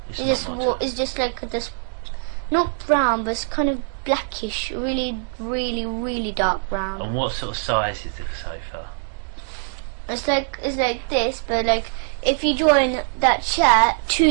It's just like this, not brown, but it's kind of blackish, really dark brown. And what sort of size is the sofa? It's like this, but like if you join that chair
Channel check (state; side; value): silent; left; 64 dB below the other